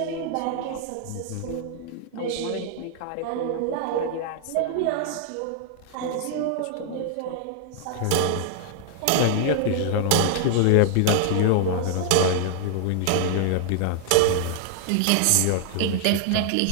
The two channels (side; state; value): both; different; correlation -0.01